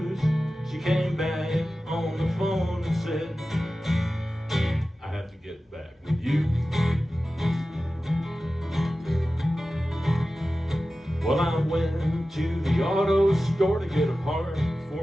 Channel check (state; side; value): normal; both; correlation 0.95